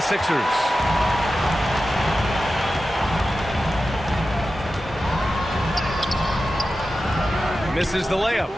Sixers. Misses the layup.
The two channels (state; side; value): normal; both; correlation 0.93